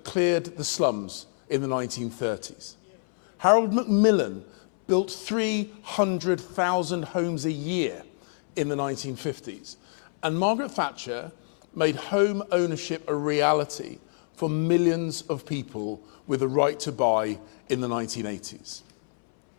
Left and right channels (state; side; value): silent; right; 60 dB below the other